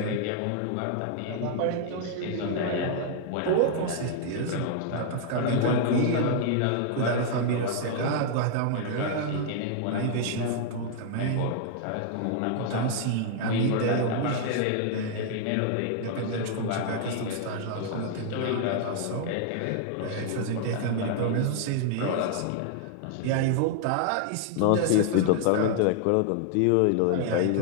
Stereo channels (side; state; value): both; different; correlation -0.01